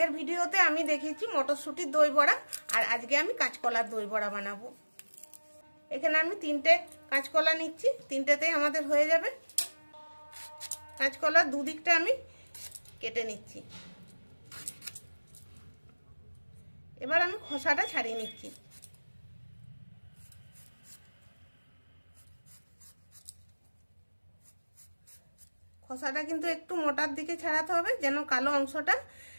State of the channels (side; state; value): both; inverted; correlation -1.00